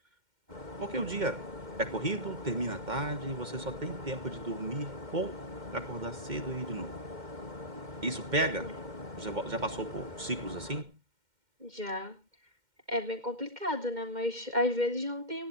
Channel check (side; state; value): left; late; 2.1 ms